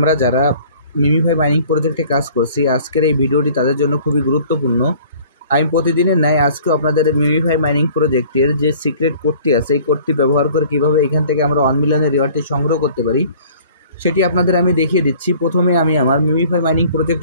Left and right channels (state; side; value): inverted; both; correlation -0.51